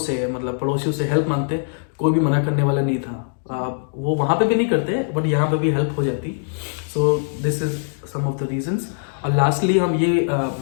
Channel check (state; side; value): silent; right; digital silence